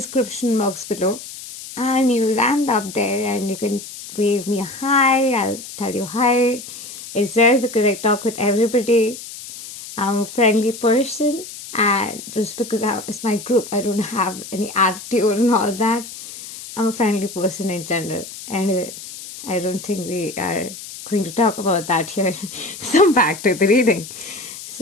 box below, and you'll land up there and you can wave me a hi. I'll tell you hi. It's there because I talk with everybody. I'm a friendly person, and just because it's my group, I don't have any attitude and all that. I'm a friendly person in general. Anyway, I don't think we are going to talk about that here. So back to the reading.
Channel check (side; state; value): left; noise; hiss, 13 dB below the sound